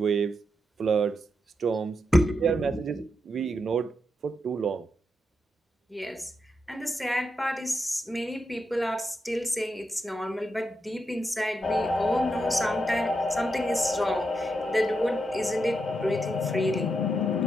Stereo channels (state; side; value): normal; both; correlation 0.84